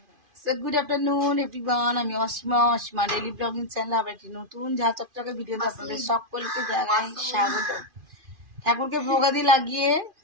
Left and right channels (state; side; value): late; left; 2.5 ms